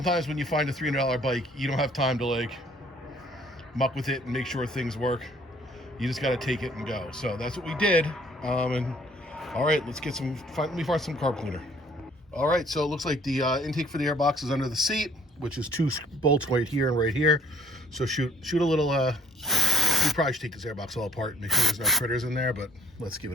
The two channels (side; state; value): both; normal; correlation 0.59